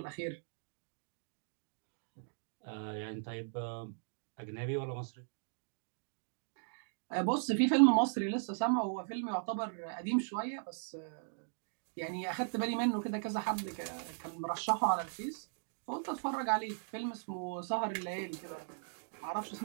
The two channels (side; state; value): left; silent; digital silence